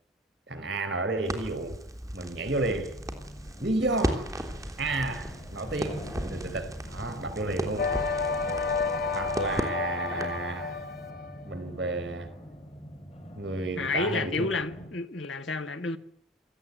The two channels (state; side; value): normal; both; correlation 0.35